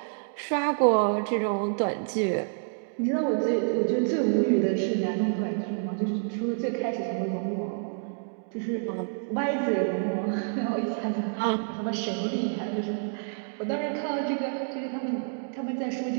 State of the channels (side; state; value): left; silent; digital silence